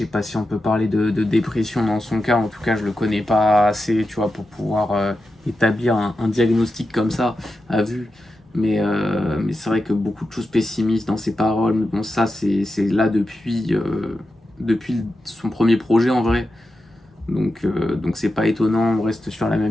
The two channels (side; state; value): both; normal; correlation 0.90